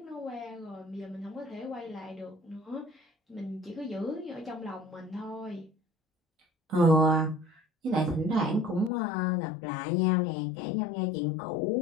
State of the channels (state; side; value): drops out; right; at 8.9 s